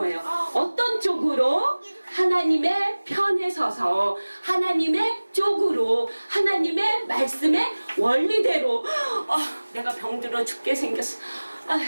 어떤 쪽으로? 하나님의 편에 서서 하나님의 쪽으로 하나님의 말씀의 원리대로. 내가 병들어 죽게 생겼어.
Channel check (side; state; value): both; inverted; correlation -1.00